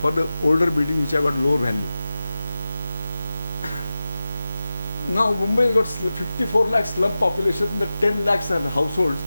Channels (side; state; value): both; inverted; correlation -0.94